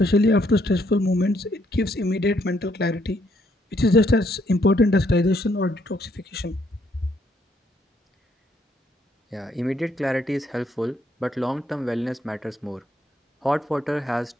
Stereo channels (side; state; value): both; normal; correlation 0.71